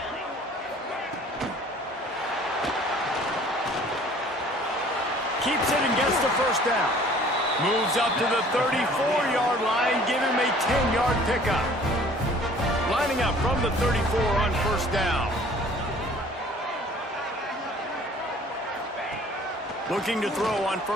Keeps it and gets the first down. Moves up to the 34-yard line, give him a 10-yard pickup. Lining up from the 34 on first down. Looking to throw on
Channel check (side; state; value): both; normal; correlation 0.52